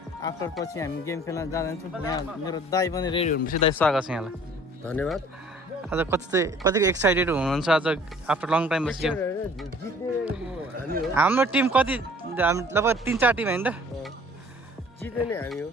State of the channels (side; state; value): both; normal; correlation 0.53